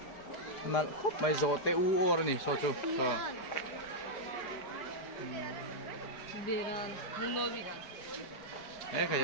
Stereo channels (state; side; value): late; right; 4.8 ms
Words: nal khop mai zo te u or ni so chu so beran muno bigan khai